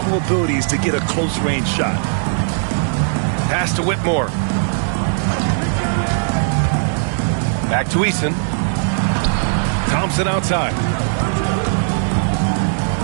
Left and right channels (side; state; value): left; silent; digital silence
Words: abilities to get a close-range shot. Pass to Whitmore. Back to Eason. Thompson outside.